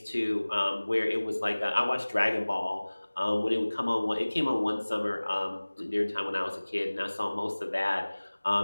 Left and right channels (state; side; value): inverted; both; correlation -1.00